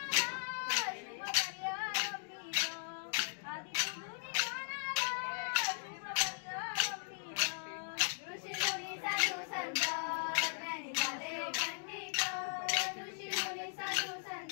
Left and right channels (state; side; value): silent; right; digital silence